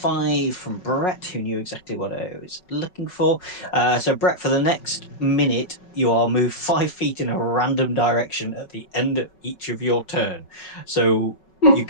from Brett, who knew exactly what I was looking for. So Brett, for the next minute, you are moved 5 feet in a random direction at the end of each of your turn. So your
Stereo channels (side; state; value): right; late; 5.4 ms